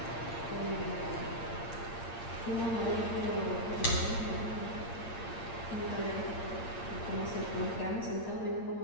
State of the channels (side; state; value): right; late; 8.7 ms